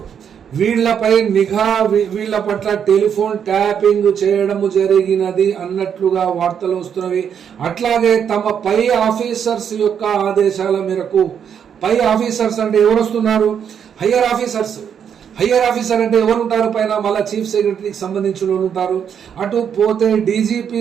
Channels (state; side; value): quieter; left; 8.0 dB